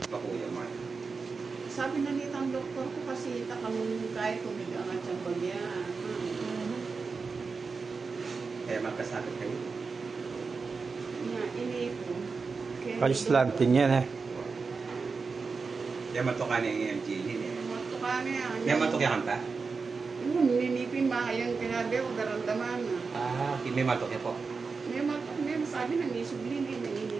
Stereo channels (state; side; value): quieter; left; 4.7 dB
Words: Mark. Sabi na nito ang doktor ko kasi takamong kahit kumigang at siyang bagya. Kaya magkasakit kayo. Ini po. Paislantin yan eh. Kaya matukan yung EMG din eh. Matukan niya. Kaya matukyan ka? Ninipin mahayang kinabi o daramdaman. May matukya po. May sabi na nisublin